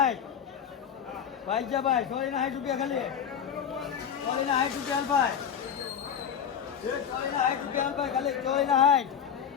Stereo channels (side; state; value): right; quieter; 8.2 dB